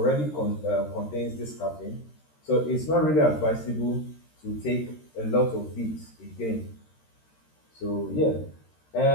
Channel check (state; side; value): late; right; 13 ms